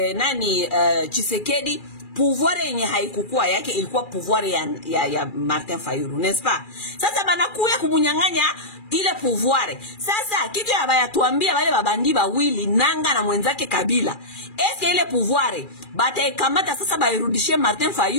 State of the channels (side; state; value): right; late; 2.4 ms